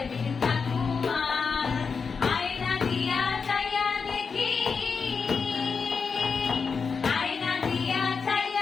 থাকুয়ার। আয়না দিয়া চাইয়া দেখি, আয়না দিয়া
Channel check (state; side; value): quieter; right; 5.4 dB